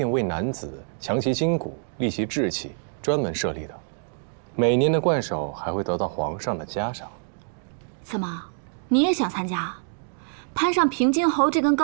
为男子强其筋骨、利其志气专门设立的。每年的冠首还会得到皇上的嘉赏。怎么，你也想参加？攀上平津侯这根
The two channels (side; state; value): left; silent; digital silence